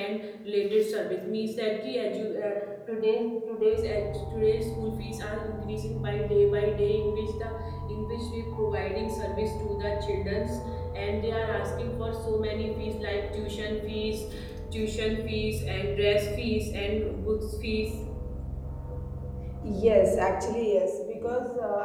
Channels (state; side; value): identical; both; correlation 1.00